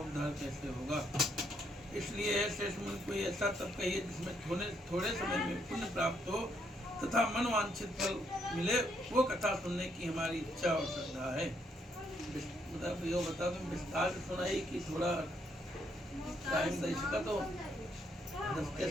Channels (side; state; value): both; normal; correlation 0.73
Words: कैसे होगा? इसलिए श्रेष्ठ मुनि कोई ऐसा तप कहिए जिसमें थोड़े समय में पुण्य प्राप्त हो तथा मनवांछित फल मिले, वो कथा सुनने की हमारी इच्छा और श्रद्धा है। बता दूं विस्तार से सुनाई कि थोड़ा टाइम दे सका तो 10 के